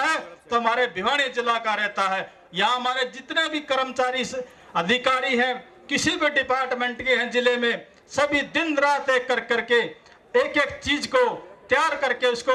तो हमारे भिवानी जिला का रहता है। यहाँ हमारे जितने भी कर्मचारी अधिकारी हैं, किसी भी डिपार्टमेंट के हैं जिले में, सभी दिन रात एक करके एक एक चीज को तैयार करके उसको,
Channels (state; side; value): identical; both; correlation 1.00